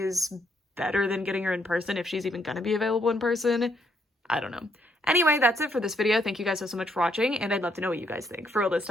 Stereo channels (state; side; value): normal; both; correlation 0.72